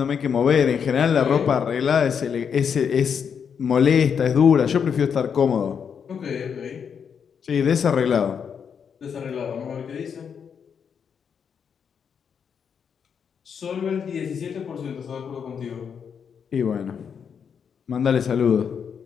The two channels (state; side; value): quieter; right; 7.1 dB